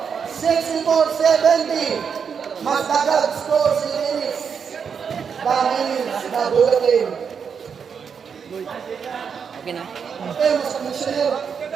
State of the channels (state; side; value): quieter; left; 6.6 dB